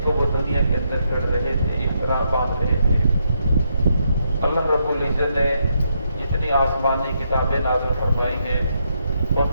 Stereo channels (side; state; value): both; inverted; correlation -0.78